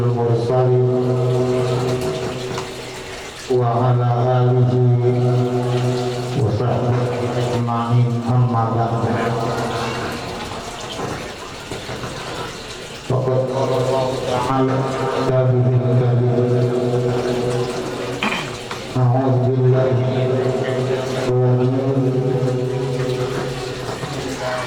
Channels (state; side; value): identical; both; correlation 1.00